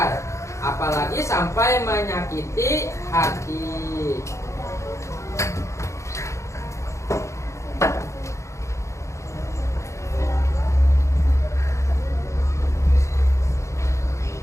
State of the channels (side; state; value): right; late; 0.14 ms